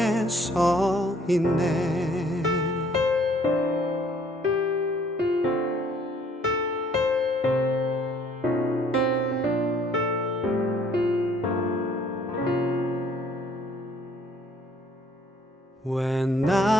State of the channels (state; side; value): normal; both; correlation 0.61